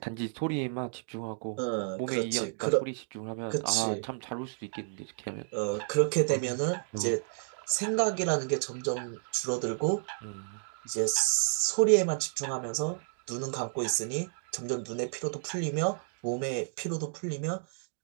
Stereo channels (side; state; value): left; silent; digital silence